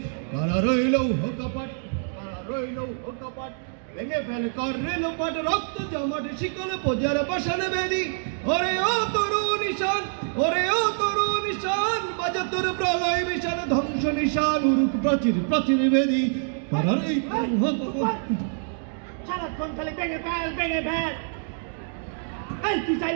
কারা রইল হোকপাট ভেঙে ফেল কর রেলপট রক্ত জমাট শিকল বোঝার পাশান বেদি ওরে ও তরু নিশান ওরে ও তরু নিশান বাজা তোর প্রলয় বিশান ধ্বংস নিশান উরুক প্রাচীরে প্রাচীরে বেদি সারাক্ষণ খালি ভেঙে ফেল এই তুই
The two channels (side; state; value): left; silent; 61 dB below the other